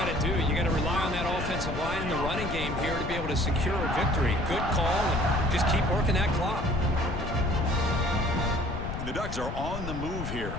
to do. You got to rely on that offensive line in the running game here to be able to secure a victory. Good call, and just keep working that clock. And the Ducks are on the move here.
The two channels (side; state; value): left; noise; rumble, 6 dB below the sound